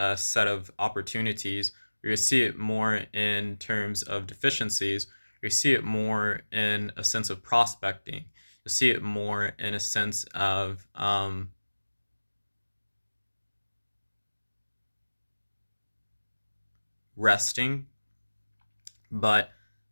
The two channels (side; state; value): both; inverted; correlation -1.00